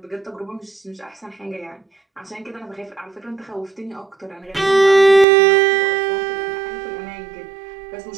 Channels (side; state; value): left; drops out; at 5.2 s